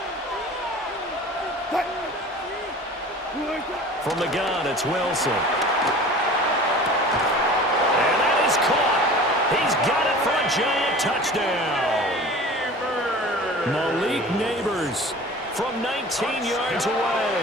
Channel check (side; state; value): both; normal; correlation 0.41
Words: From the gun, it's Wilson. And that is caught. He's got it for a Giant touchdown. Malik Neighbors from 19 yards